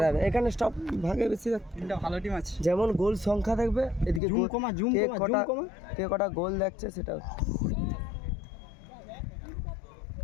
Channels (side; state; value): right; drops out; at 4.2 s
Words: যাবে এখানে স্টপ ভাগে বেশি তিনটা ভালো টিম আছে যেমন গোল সংখ্যা দেখবে এদিকে জুম কমা কে কটা গোল দেখছে সেটা